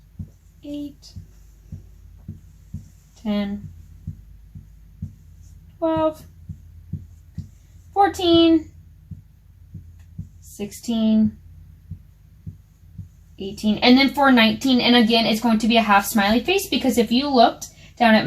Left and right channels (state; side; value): identical; both; correlation 1.00